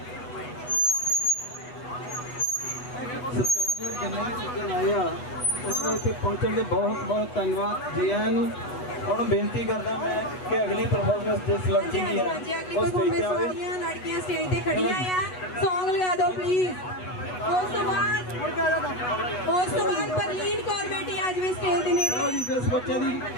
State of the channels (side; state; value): right; late; 8.1 ms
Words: ਇੱਥੇ ਪਹੁੰਚਣ ਦੇ ਬਹੁਤ ਬਹੁਤ ਧੰਨਵਾਦ ਜੀ ਆਇਆਂ ਨੂੰ। ਹੁਣ ਬੇਨਤੀ ਕਰਦਾ ਮੈਂ ਕਿ ਅਗਲੀ ਪਰਫਾਰਮੈਂਸ ਜਿਸ ਲੜਕੀ ਦੀ ਹੈ ਉਹ ਸਟੇਜ ਤੇ ਆਵੇ। ਲੜਕੀਆਂ ਸਟੇਜ ਤੇ ਖੜੀਆਂ ਆ, ਸੌਂਗ ਲਗਾ ਦਿਓ ਪਲੀਜ਼। ਉਸ ਤੋਂ ਬਾਅਦ ਪਰਲੀਨ ਕੌਰ ਬੇਟੀ ਆ ਜਾਵੇ ਸਟੇਜ ਦੇ ਨੇੜੇ। ਲਓ ਜੀ, ਜਿਸ ਬੱਚੇ ਦੀ